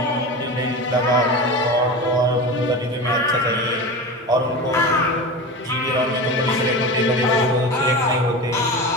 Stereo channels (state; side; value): normal; both; correlation 0.27